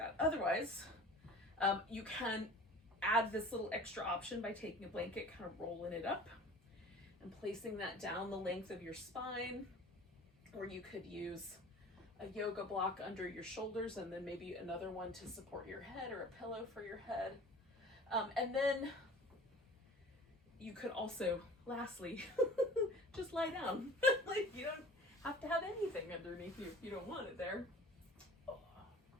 Otherwise, you can add this little extra option by taking a blanket, kind of rolling it up and placing that down the length of your spine. Or you could use a yoga block under your shoulders and then maybe another one to support your head or a pillow for your head. And then you could also, lastly, just lie down. Like, you don't have to have anything underneath you if you don't want it there.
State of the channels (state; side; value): normal; both; correlation 0.43